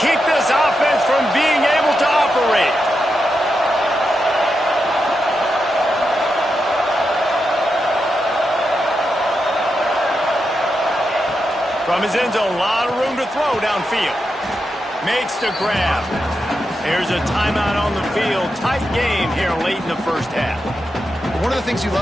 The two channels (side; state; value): both; normal; correlation 0.86